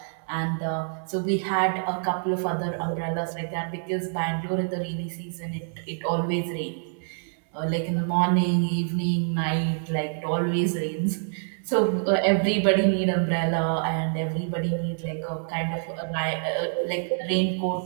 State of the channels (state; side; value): silent; left; 61 dB below the other